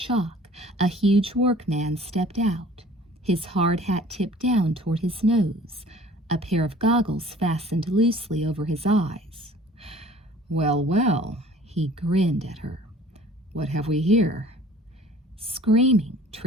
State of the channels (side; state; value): both; normal; correlation 0.49